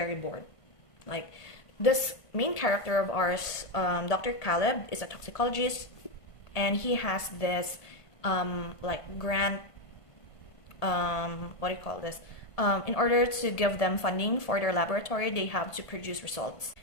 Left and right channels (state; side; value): late; right; 1.5 ms